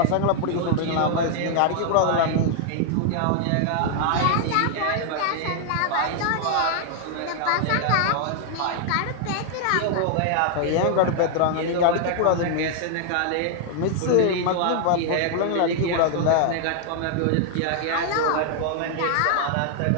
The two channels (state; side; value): different; both; correlation 0.00